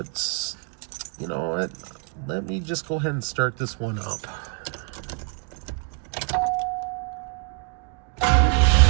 you know what? Let me just go ahead and start this one up.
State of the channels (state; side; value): quieter; left; 39.3 dB